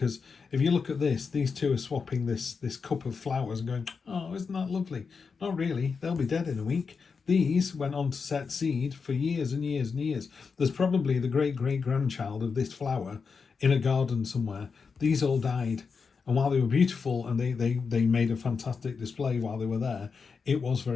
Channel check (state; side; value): quieter; right; 5.3 dB